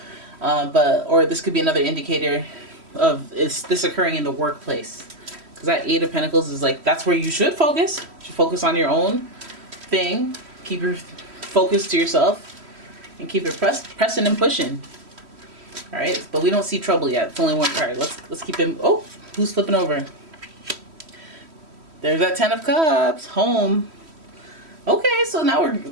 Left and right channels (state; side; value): late; left; 3.1 ms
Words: Or this could be another indicator of, is this occurring in the workplace? Because that Eight of Pentacles is like, that's where you should focus. You should focus on your own thing. Keep your focus to yourself. And keep it pressing and pushing. Alright, but we don't see trouble yet. It's only one card. Let's keep him. Oh, who's flipping over? There's that Ten of Cups. Home. Okay, so now